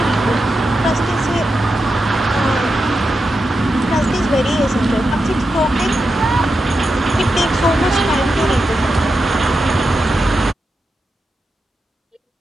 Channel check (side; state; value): both; normal; correlation 0.88